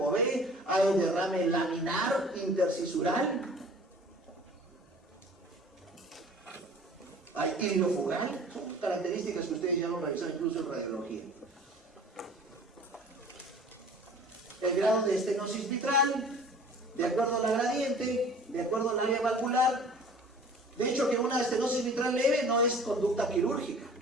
B, hay derrame laminar intercisural, hay iliofugal. Son características que ustedes ya lo han revisado incluso en radiología. El grado de estenosis mitral, de acuerdo a la gradiente, de acuerdo al área valvular. De hecho, que una estenosis mitral leve no es conducta quirúrgica,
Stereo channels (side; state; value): both; normal; correlation 0.47